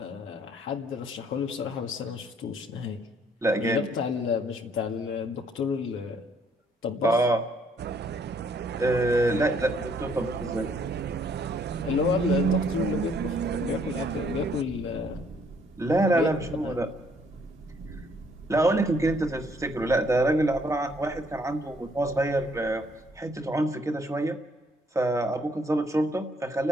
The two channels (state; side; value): normal; both; correlation 0.66